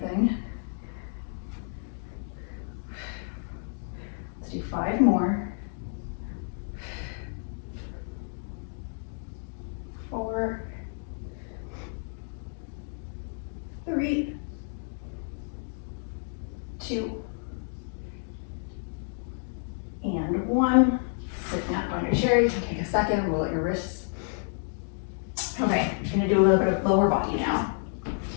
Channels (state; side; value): silent; right; 58 dB below the other